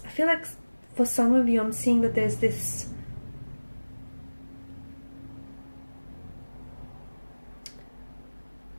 like for some of you, I'm seeing that there's this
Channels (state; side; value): inverted; both; correlation -1.00